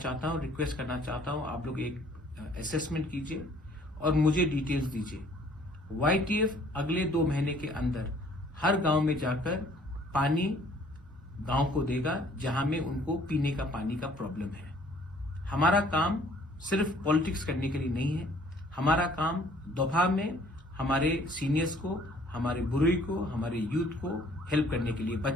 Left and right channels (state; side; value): normal; both; correlation 0.58